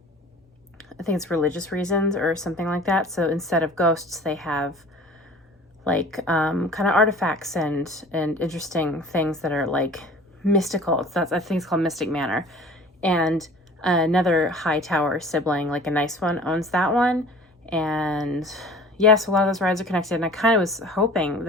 it's religious reasons or something like that. So instead of ghosts, they have like kind of artifacts and interesting things that are like mystical. I think it's called Mystic Manor. And another Hightower sibling, like a nice one, owns that one. And yes, a lot of those rides are connected. And I kind of was hoping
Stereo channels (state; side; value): normal; both; correlation 0.45